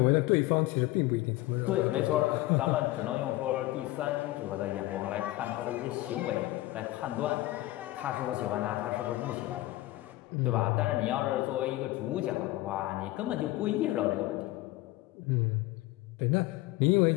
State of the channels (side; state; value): right; quieter; 17.8 dB